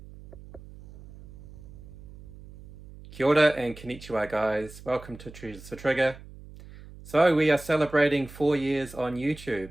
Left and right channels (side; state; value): right; noise; hum, 18 dB below the sound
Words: Kia ora and konnichiwa guys, welcome to Treasures to Trigger. So we are celebrating 4 years on